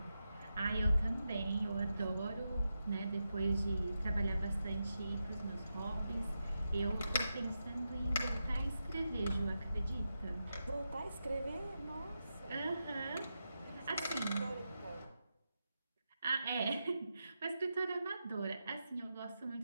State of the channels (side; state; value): both; inverted; correlation -0.88